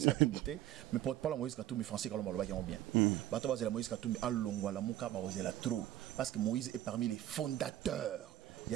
Katumbi, mais porte-parole à Moïse Katumbi, français, quand on va bien. Bato la Moïse Katumbi, à Longwa, la Mouka, la trop. Parce que Moïse est parmi les fondateurs. Il y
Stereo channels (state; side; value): quieter; left; 13.3 dB